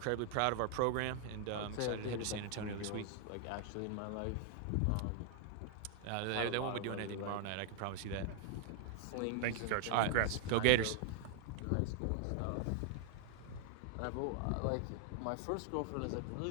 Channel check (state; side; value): different; both; correlation 0.00